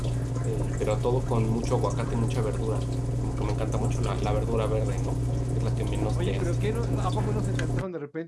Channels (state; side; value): identical; both; correlation 1.00